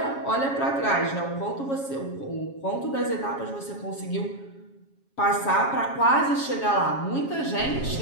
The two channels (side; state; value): right; late; 7.3 ms